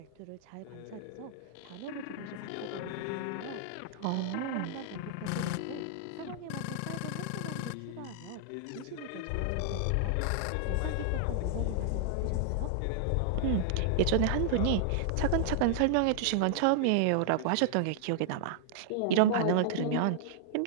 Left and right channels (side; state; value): both; different; correlation -0.01